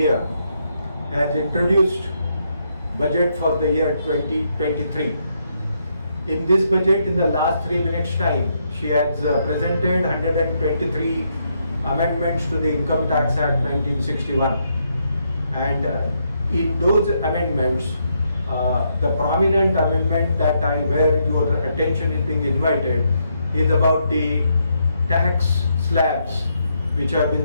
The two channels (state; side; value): inverted; both; correlation -0.77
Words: has introduced budget for the year 2023. In this budget, in the last 3 minutes time, she has presented 123 amendments to the Income Tax Act 1961. And in those amendments, the prominent amendment where your attention is being invited is about the tax slabs which have